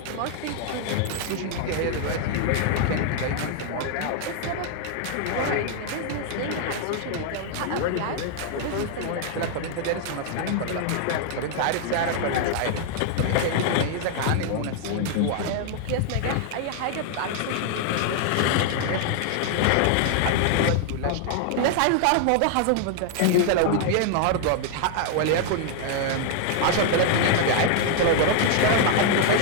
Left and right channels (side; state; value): both; different; correlation 0.00